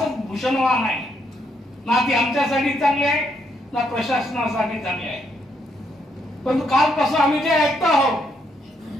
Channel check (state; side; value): normal; both; correlation 0.75